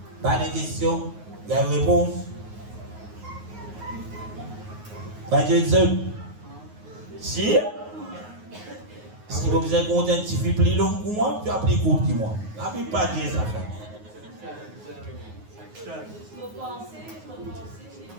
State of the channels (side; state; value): left; late; 9.5 ms